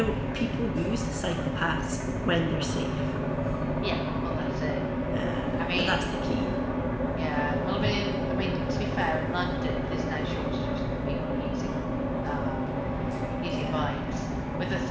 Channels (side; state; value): both; identical; correlation 1.00